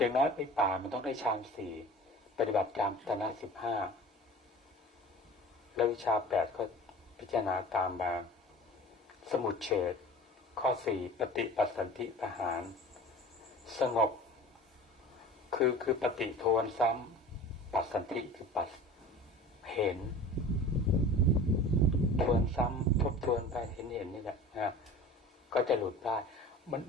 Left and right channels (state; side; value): normal; both; correlation 0.40